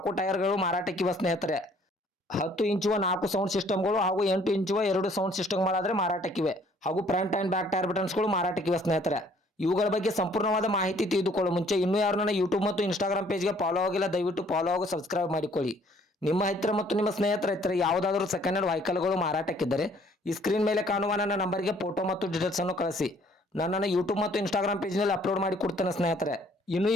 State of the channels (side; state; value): both; normal; correlation 0.60